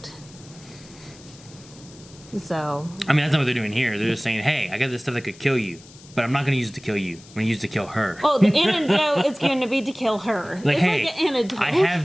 So... I mean, that's not what they're doing here. They're just saying, hey, I got this stuff that could kill you, but I'm not going to use it to kill you. I'm going to use it to kill her. Oh, the antidote is going to be to kill her. Like, it's hey, like an antidote. I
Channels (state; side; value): noise; left; hiss, 22 dB below the sound